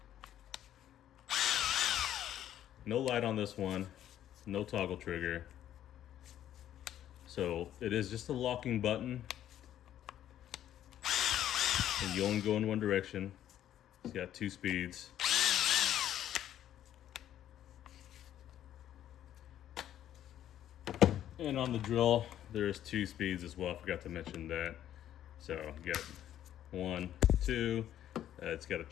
No light on this one, no toggle trigger. So it is just a locking button, and you only go in one direction. It's got 2 speeds. And on the drill, there's 2 speeds as well. I forgot to mention that. So you got 1, 2. It's got a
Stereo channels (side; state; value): right; quieter; 11.4 dB